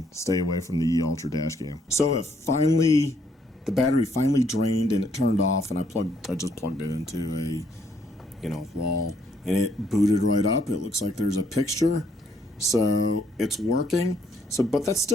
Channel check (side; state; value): both; normal; correlation 0.70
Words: stay away from the Ultra Dashcam. So the battery finally drained and it turned off, and I just plugged it into a, you know, wall, and it booted right up. It looks like there's a picture, so it's working. So, but that's